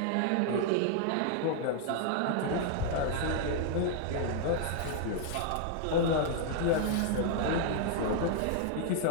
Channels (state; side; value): different; both; correlation -0.01